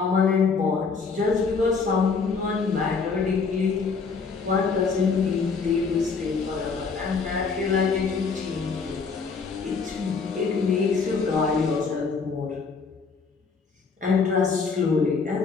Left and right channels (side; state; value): right; quieter; 5.0 dB